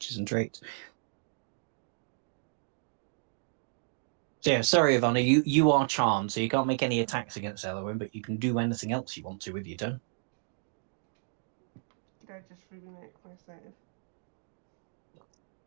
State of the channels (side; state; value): left; silent; digital silence